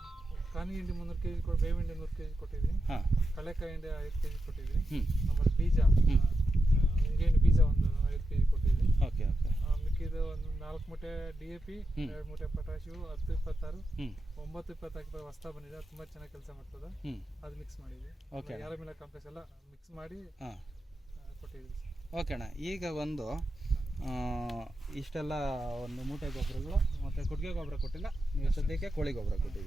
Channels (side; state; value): both; normal; correlation 0.88